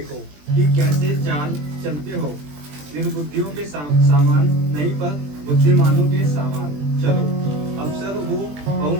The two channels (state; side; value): late; left; 20 ms